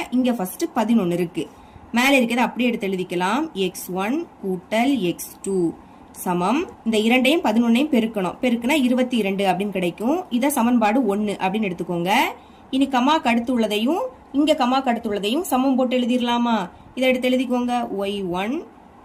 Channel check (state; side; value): identical; both; correlation 1.00